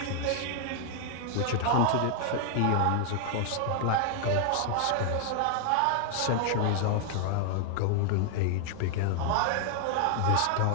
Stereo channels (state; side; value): different; both; correlation 0.00